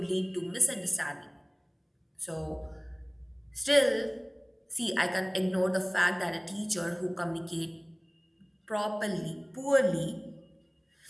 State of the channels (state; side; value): identical; both; correlation 1.00